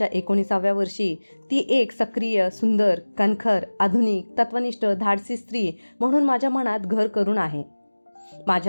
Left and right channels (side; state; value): both; inverted; correlation -1.00